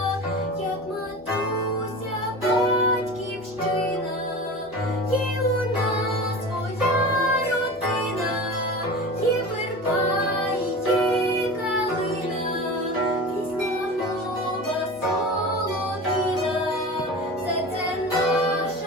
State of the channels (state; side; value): normal; both; correlation 0.32